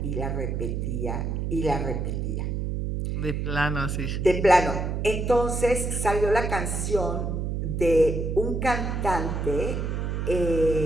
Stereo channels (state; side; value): noise; right; hum, 2 dB below the sound